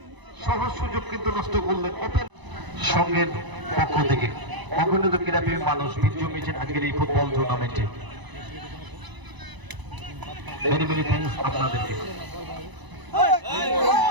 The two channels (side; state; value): left; late; 1.0 ms